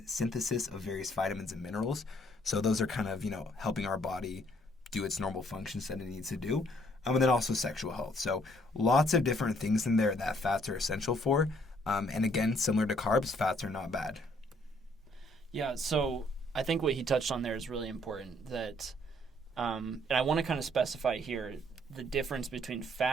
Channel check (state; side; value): normal; both; correlation 0.65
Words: synthesis of various vitamins and minerals. So those are kind of, helping our body do its normal functions that it needs to do. And then also sexual health. So lots of different things in there that fats are essential for. And again, similar to carbs, fats are not bad. Yeah, so I think what he touched on there is really important. And I want to kind of specify here the difference between